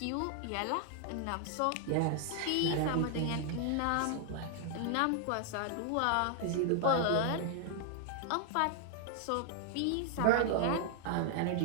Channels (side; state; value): both; different; correlation 0.00